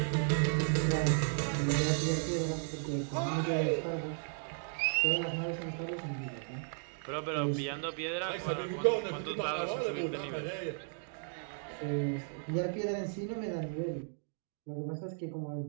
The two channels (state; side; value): silent; left; digital silence